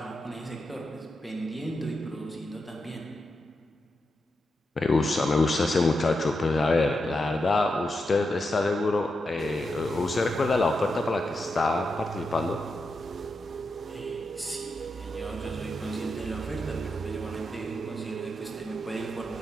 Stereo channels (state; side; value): normal; both; correlation 0.86